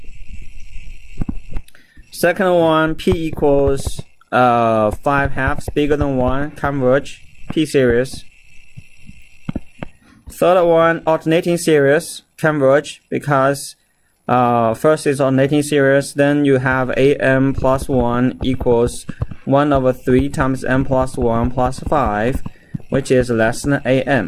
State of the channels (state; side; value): identical; both; correlation 1.00